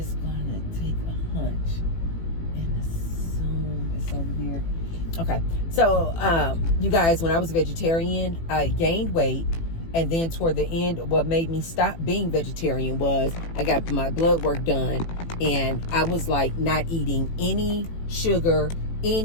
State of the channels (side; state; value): right; late; 18 ms